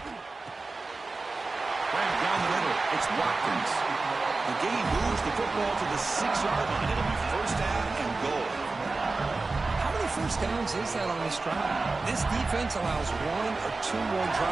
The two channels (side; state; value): left; quieter; 3.6 dB